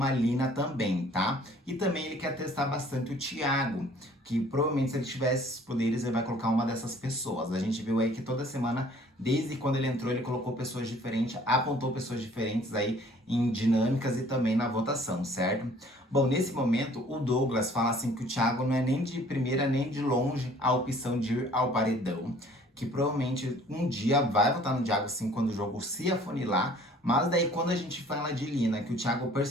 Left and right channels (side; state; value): both; normal; correlation 0.54